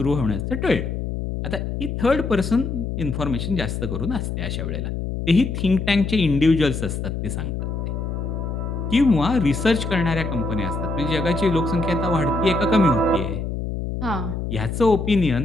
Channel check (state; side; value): noise; left; hum, 4 dB below the sound